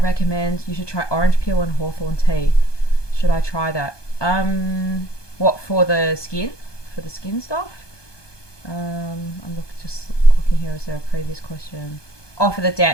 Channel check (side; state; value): right; late; 1.2 ms